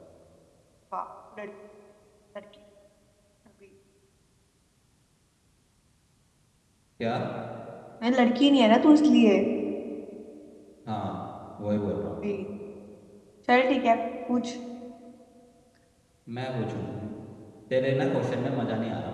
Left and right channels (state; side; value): identical; both; correlation 1.00